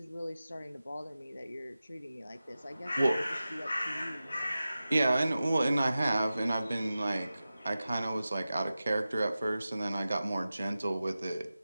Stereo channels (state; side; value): inverted; both; correlation -0.94